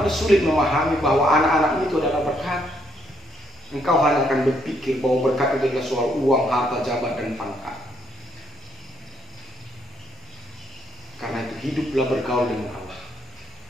sulit memahami bahwa anak-anakmu itu adalah berkat. Engkau hanya akan berpikir bahwa berkat itu adalah soal uang, harta, jabatan, dan pangkat. Karena itu hiduplah bergaul dengan Allah.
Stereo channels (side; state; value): both; normal; correlation 0.72